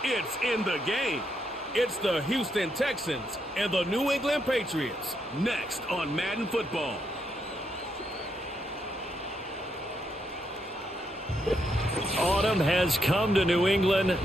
it's in the game. It's the Houston Texans and the New England Patriots. Next on Madden Football. Autumn has come to New England.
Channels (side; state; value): both; normal; correlation 0.79